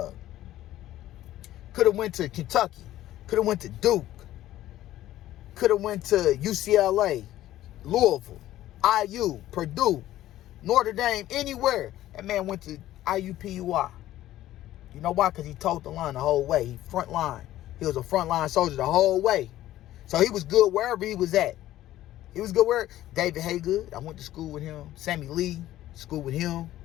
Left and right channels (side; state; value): right; quieter; 14.0 dB